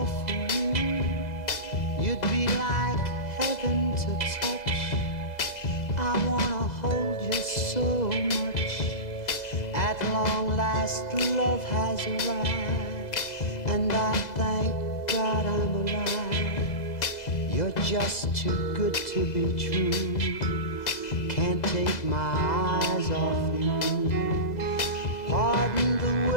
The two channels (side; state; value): right; late; 2.0 ms